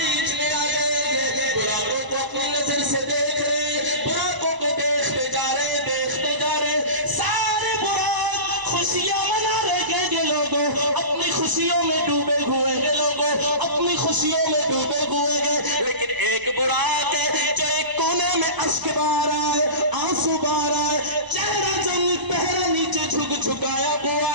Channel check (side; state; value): left; late; 1.0 ms